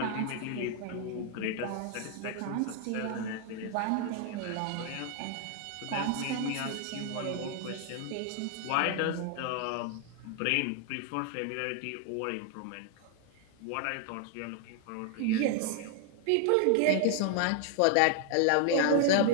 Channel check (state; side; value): different; both; correlation 0.00